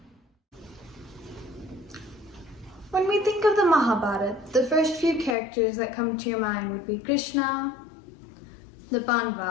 When we think of the Mahabharata, the first few characters that come to your mind would be Krishna, the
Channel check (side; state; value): right; drops out; at 5.4 s